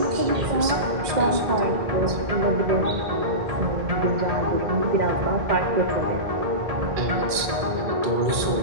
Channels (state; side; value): late; left; 2.3 ms